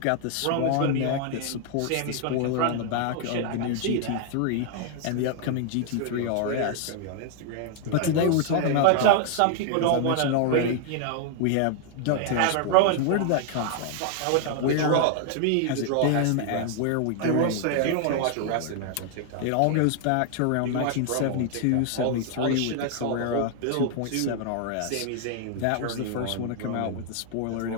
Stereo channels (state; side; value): different; both; correlation 0.00